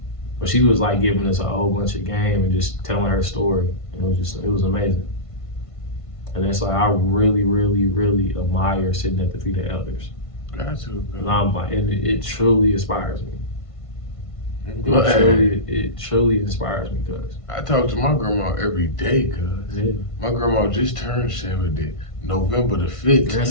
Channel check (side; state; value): right; late; 1.5 ms